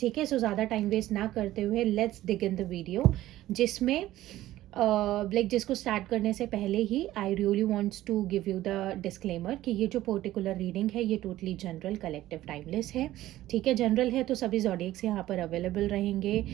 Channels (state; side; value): quieter; left; 14.9 dB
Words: है, सो ज़्यादा टाइम वेस्ट ना करते हुए let's dig in the video, जिसमें लाइक जिसको स्टार्ट करने से पहले ही I really wants to give you the disclaimer कि ये जो पर्टिकुलर रीडिंग है ये टोटली जनरल, कलेक्टिव, टाइमलेस है। ठीक है, जनरल है तो सभी जॉडियक्स यहाँ पर अवेलेबल रहेंगे